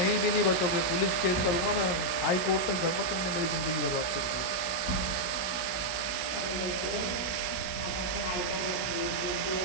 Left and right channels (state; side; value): late; right; 16 ms